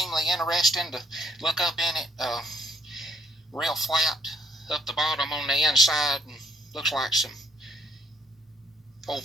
interesting to look up in it. Real flat up the bottom on the inside, and looks like some old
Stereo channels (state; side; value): normal; both; correlation 0.68